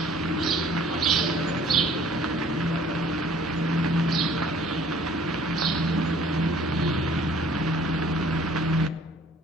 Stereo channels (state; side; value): normal; both; correlation 0.55